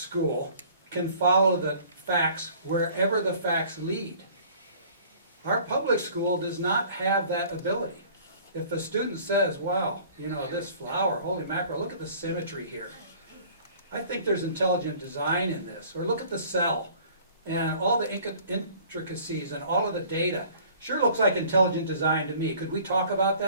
can follow the facts wherever the facts lead. Our public school does not have that ability. If a student says, wow, you know, this flower, holy mackerel, look at the symmetry here. I think there's intelligent design in this. Or look at the cell and all the intricacies and all of the data. Sure looks like intelligent design to me. Could we talk about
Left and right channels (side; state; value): both; inverted; correlation -0.51